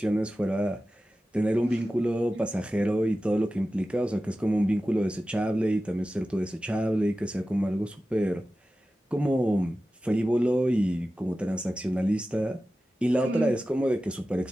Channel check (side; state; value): both; normal; correlation 0.94